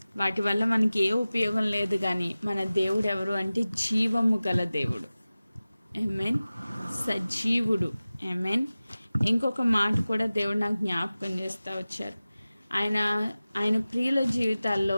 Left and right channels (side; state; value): both; inverted; correlation -0.97